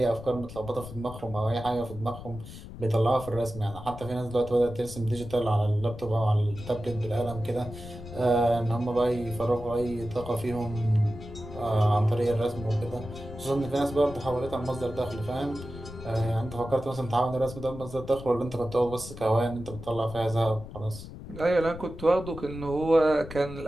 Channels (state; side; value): noise; left; rumble, 13 dB below the sound